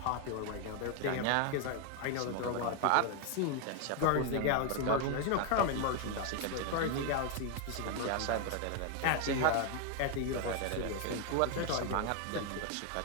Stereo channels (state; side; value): different; both; correlation 0.00